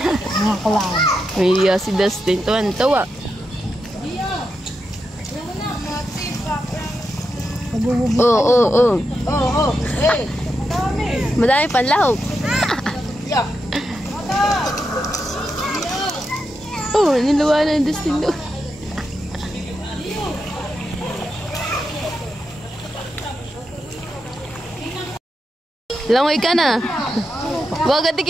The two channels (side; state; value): both; normal; correlation 0.86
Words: Mga kulang. May si Dustin. Tuwan-tawa. Oo. Madami panlahok. Niluwa na yung Dustin doon. Langoy ka na. Huwag ka